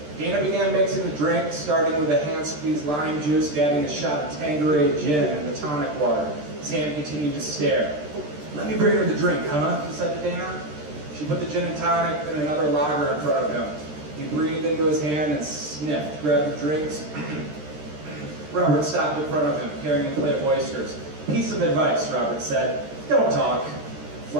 Dana began mixing the drink, starting with a hand-squeezed lime juice, adding a shot of Tanqueray gin and the tonic water. Sam continued to stare. "Let me bring her the drink, huh?" he said to Dana. She put the gin and tonic and another lager in front of him. He breathed into his hand and sniffed, grabbed the drinks. Robert stopped in front of him, carrying a plate of oysters. "Piece of advice," Robert said. "Don't talk."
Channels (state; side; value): late; left; 13 ms